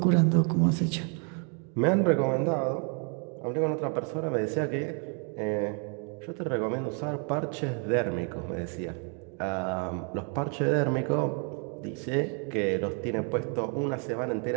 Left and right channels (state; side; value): quieter; left; 39.1 dB